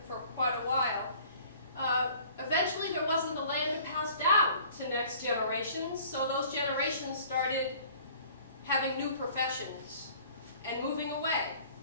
for quite a while. Eventually, there wasn't the land to pass down to next generations, so those generations started having new professions and moving away.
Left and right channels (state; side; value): inverted; both; correlation -0.51